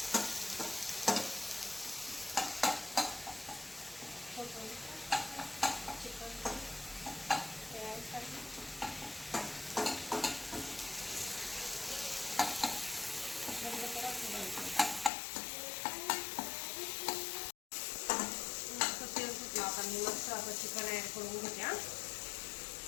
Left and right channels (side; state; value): right; drops out; at 15.1 s